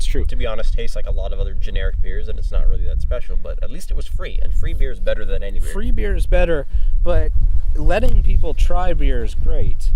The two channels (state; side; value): identical; both; correlation 1.00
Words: true. To be honest, tastes like a lot of other generic beers, and it's not really that special. But at least it was free, and free beer is better than any beer. Free beer is better, but letting people try beer is great.